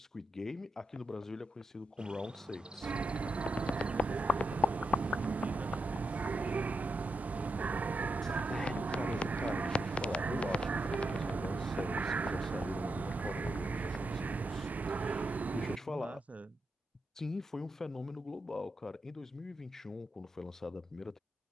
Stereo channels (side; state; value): both; normal; correlation 0.84